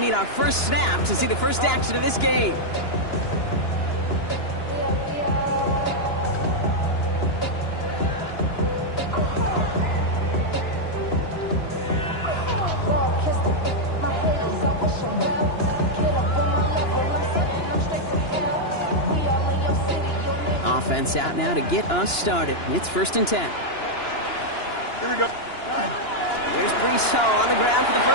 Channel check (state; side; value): late; right; 2.9 ms